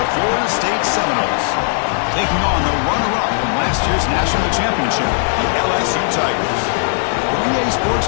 the Florida State Seminoles, taking on the runner-up from last year's national championship, the LSU Tigers. For EA Sports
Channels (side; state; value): right; silent; digital silence